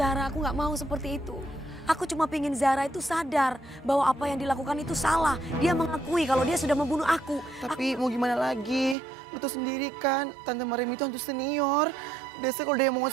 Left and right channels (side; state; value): left; drops out; at 9.0 s